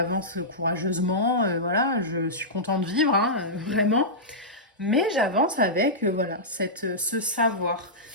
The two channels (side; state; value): both; normal; correlation -0.13